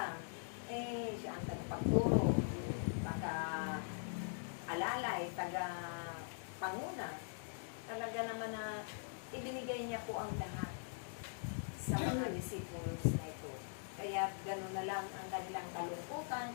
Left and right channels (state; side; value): silent; right; digital silence